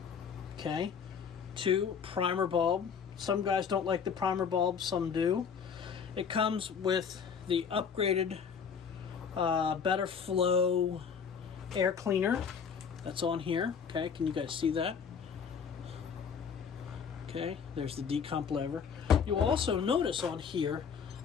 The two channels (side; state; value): right; quieter; 6.7 dB